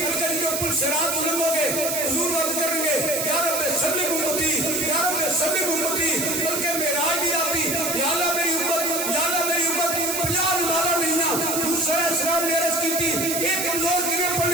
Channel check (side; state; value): right; noise; hiss, 1 dB below the sound